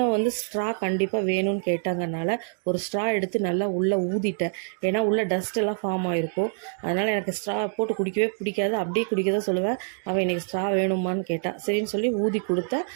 ஸ்ட்ரா கண்டிப்பாக வேணும்னு கேட்டாங்கனால ஒரு ஸ்ட்ரா எடுத்து நல்லா உள்ளே ஊதிட்டேன். ஏன்னா உள்ளே டஸ்ட் எல்லாம் ஃபார்ம் ஆகிருக்கும். அதனால் எனக்கு ஸ்ட்ரா போட்டு குடிக்கவே பிடிக்காது. அப்படியே குடிக்க தான் சொல்லுவேன். அவன் இன்றைக்கி ஸ்ட்ரா வேணுமான்னு கேட்டான். சரின்னு சொல்லி ஊதி கொடுத்தேன்.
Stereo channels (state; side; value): silent; left; digital silence